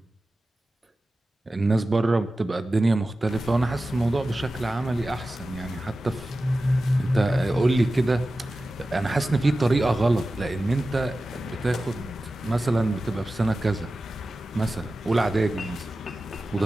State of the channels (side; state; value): both; normal; correlation 0.94